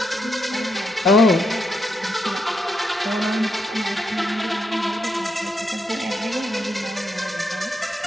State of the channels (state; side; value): normal; both; correlation 0.80